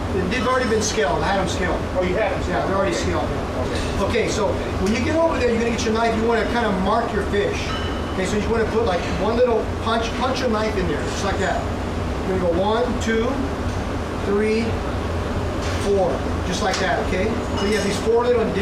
They've already been scaled. I had them scaled. Oh, you had them? Yeah, they're already scaled. Okay, so when you get over there, you're going to get your knife. You want to kind of mark your fish. Okay, so you want to put like one little punch your knife in there, just like that. You're going to go 1, 2, 3, 4, just like that, okay? So you have these 4 little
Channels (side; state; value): both; identical; correlation 1.00